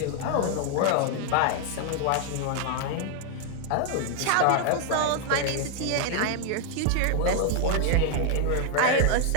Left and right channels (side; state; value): both; different; correlation 0.00